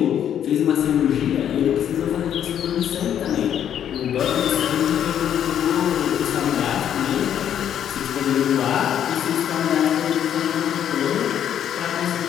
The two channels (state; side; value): quieter; right; 9.7 dB